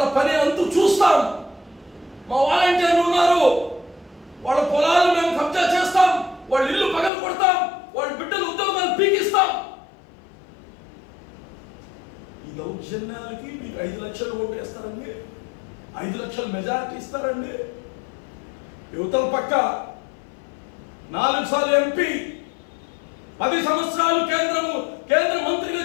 పని అంతు చూస్తాం, మా వాలంటీర్లు ఉన్నారు, వాళ్ళ పొలాలు మేము కబ్జా చేస్తాం, వాళ్ళ ఇల్లు పగలు కొడతాం, వాళ్ళ బిడ్డలు ఉద్యోగాలు పీకిస్తాం. ఈ దౌర్జన్యాలకి మీకు 5 లక్షలు ఓటు వేస్తారండి, 5 లక్షల మెజారిటీ ఇస్తారండి. యువతల పక్క 4 సార్లు ఎంపీ, 10 సంవత్సరాలు కేంద్ర మంత్రిగా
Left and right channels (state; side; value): drops out; right; at 7.1 s